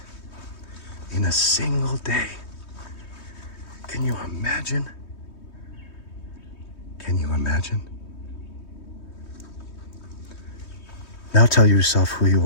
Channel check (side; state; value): right; late; 3.2 ms